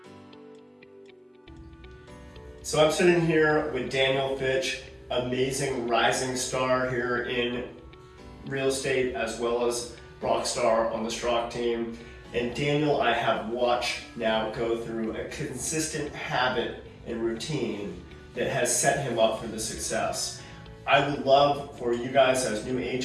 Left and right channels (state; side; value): identical; both; correlation 1.00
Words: So I'm sitting here with Daniel Fitch, amazing rising star here in real estate, as well as rock star on the Strock team. And Daniel, I have watched now go through a consistent habit and routine that has set him up for the success. I would love for you guys as new